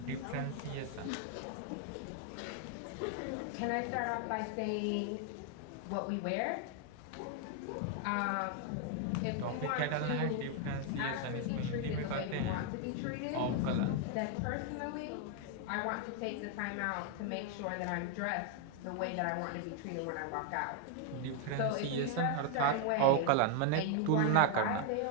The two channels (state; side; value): different; both; correlation 0.00